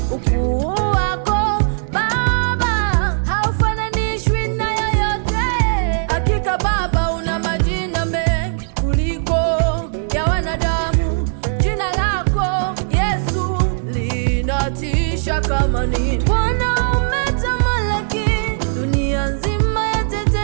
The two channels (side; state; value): left; silent; digital silence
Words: Ukuu wako Baba haufananishwi na yoyote. Hakika Baba una majina mengi kuliko ya wanadamu. Jina lako Yesu linatisha kama nini. Bwana umetamalaki, dunia nzima